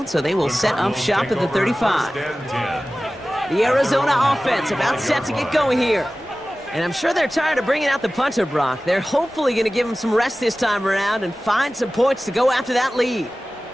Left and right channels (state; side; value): normal; both; correlation 0.97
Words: so they will set up shop at the 35. The Arizona offense about set to get going here. And I'm sure they're tired of bringing out the punter, Brock. They're hopefully going to give him some rest this time around and find some points to go after that lead.